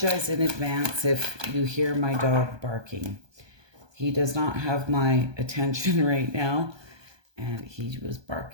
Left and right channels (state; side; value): late; left; 1.2 ms